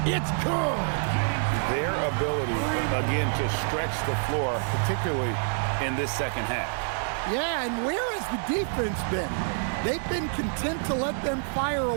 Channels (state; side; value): silent; left; 60 dB below the other